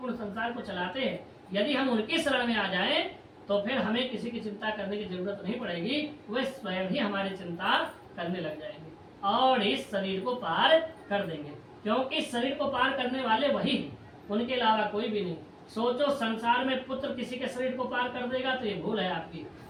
संसार को चलाते हैं, यदि हम उनकी शरण में आ जाएं तो फिर हमें किसी की चिंता करने की जरूरत नहीं पड़ेगी। वे स्वयं ही हमारी चिंता करने लग जाएंगे और इस शरीर को पार कर देंगे, क्योंकि शरीर को पार करने वाले वही हैं, उनके अलावा कोई भी नहीं। सोचो, संसार में पुत्र किसी के शरीर को पार कर देगा तो ये भूल है आपकी,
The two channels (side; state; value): both; identical; correlation 1.00